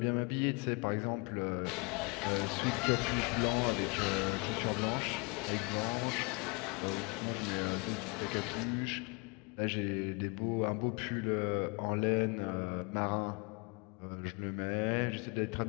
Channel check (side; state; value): right; quieter; 30.8 dB